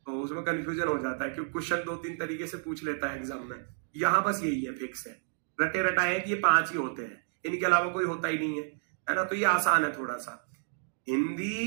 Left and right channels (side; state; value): left; silent; digital silence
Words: तो उसमें कंफ्यूजन हो जाता है क्योंकि क्वेश्चन 2-3 तरीके से पूछ लेता है एग्जाम में। यहाँ बस यही है, फिक्स है, रटे रटाए कि ये 5 ही होते हैं, इनके अलावा कोई होता ही नहीं है ना। तो ये आसान है थोड़ा सा।